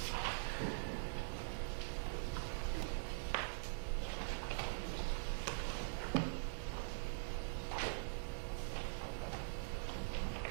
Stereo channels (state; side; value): silent; left; digital silence